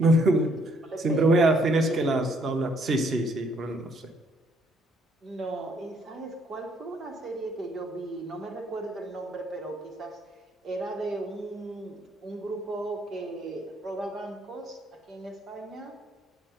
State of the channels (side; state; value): both; normal; correlation 0.67